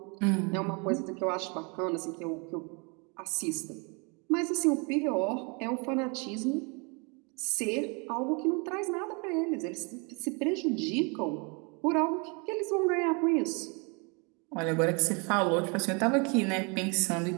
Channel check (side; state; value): left; quieter; 32.4 dB